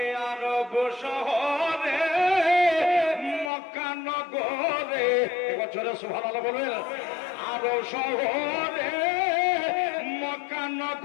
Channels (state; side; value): drops out; right; at 3.5 s